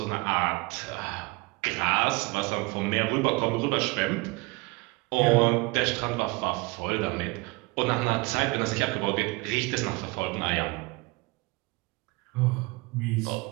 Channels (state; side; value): quieter; left; 25.5 dB